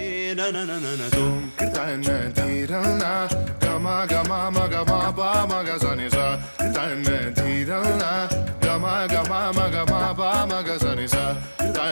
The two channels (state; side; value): inverted; both; correlation -1.00